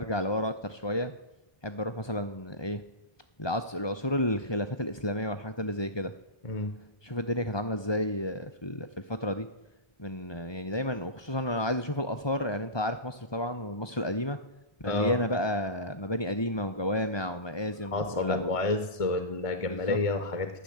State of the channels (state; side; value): late; right; 1.2 ms